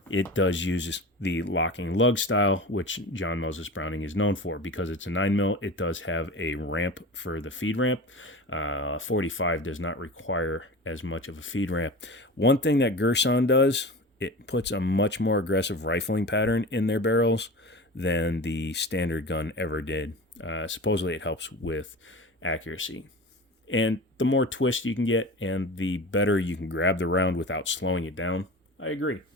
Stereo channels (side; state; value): both; normal; correlation 0.33